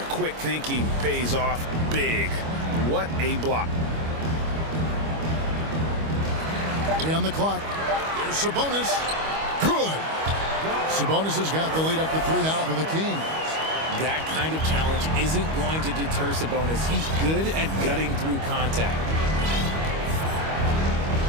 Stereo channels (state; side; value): late; left; 25 ms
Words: quick thinking pays off big. What a block. On the clock. Here's Sabonis. Good. Sabonis has got the lead up to 3 now for the Kings. That kind of challenge isn't going to deter Sabonis. He's good at gutting through contact.